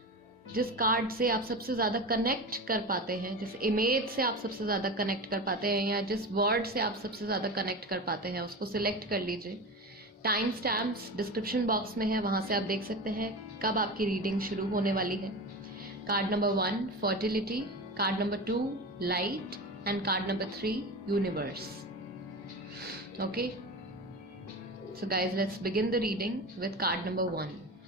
जिस कार्ड से आप सबसे ज्यादा कनेक्ट कर पाते हैं, जिस इमेज से आप सबसे ज्यादा कनेक्ट कर पाते हैं या जिस वर्ड से आप सबसे ज्यादा कनेक्ट कर पाते हैं, उसको सिलेक्ट कर लीजिए। टाइम स्टैम्प्स डिस्क्रिप्शन बॉक्स में है, वहां से आप देख सकते हैं कब आपकी रीडिंग शुरू होने वाली है। Card number 1 fertility, card number 2 light and card number 3 universe. Okay, so guys let's begin the reading with card number 1।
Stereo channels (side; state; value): both; normal; correlation 0.26